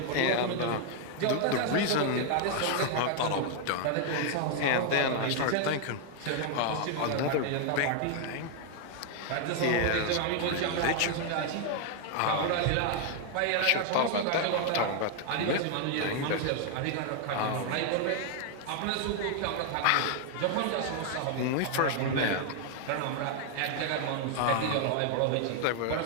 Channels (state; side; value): different; both; correlation 0.00